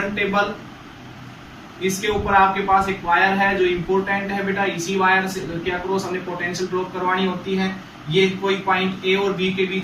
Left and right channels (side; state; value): both; identical; correlation 1.00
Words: टेबल, इसके ऊपर आपके पास एक वायर है जो इंपॉर्टेंट है बेटा, इसी वायर से के अक्रॉस हमने पोटेंशियल ड्रॉप करवानी होती है। ये कोई पॉइंट ए और बी के